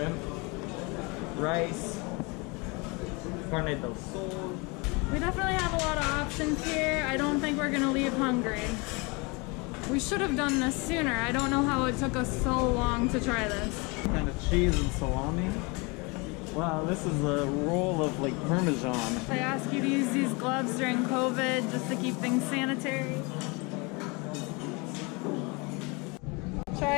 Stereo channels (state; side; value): quieter; right; 28.5 dB